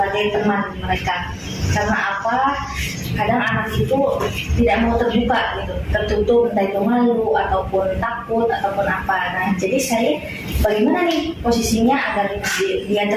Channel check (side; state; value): both; identical; correlation 1.00